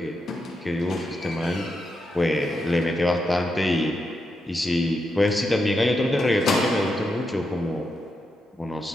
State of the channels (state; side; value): normal; both; correlation 0.84